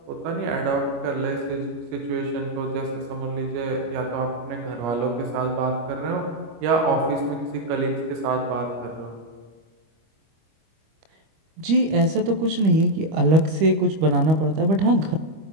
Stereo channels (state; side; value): late; left; 25 ms